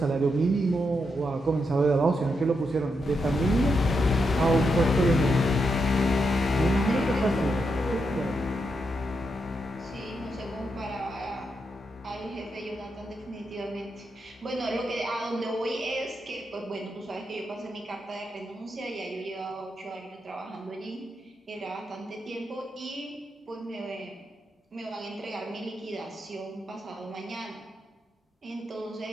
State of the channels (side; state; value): both; normal; correlation 0.83